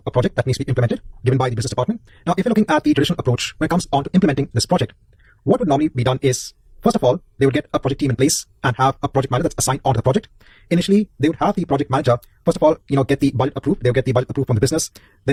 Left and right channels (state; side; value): identical; both; correlation 1.00